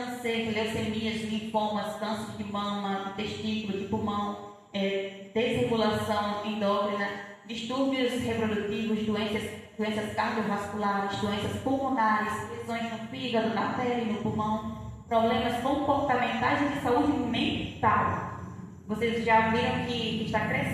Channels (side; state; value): both; identical; correlation 1.00